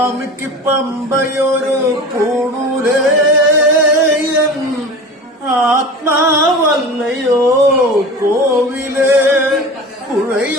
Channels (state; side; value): normal; both; correlation 0.34